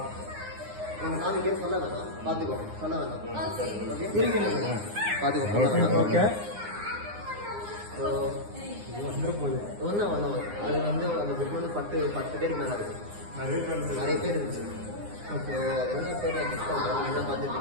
நான் இங்கே சொல்ல வேணாம், பார்த்துக்கோ, சொல்ல வேணாம். ஓகே, பார்த்துக்கோ, சொல்ல வேணாம். ஓகே. ஸோ ஒன்றும் அது வந்து அந்த புக் வந்து 10 பேருக்கு மேலே இருக்கு. நிறைய பேர் இருந்துச்சு. ஓகே, அது என்ன பேர் நான் கிஃப்ட் பண்ணுறேன், என்ன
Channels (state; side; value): late; left; 9.7 ms